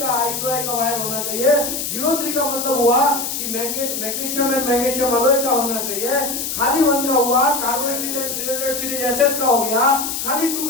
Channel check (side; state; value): left; noise; hiss, 3 dB below the sound